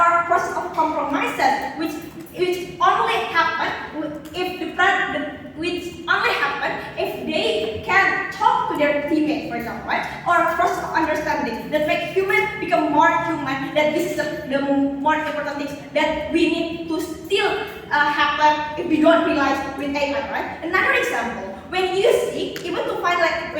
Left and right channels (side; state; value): both; identical; correlation 1.00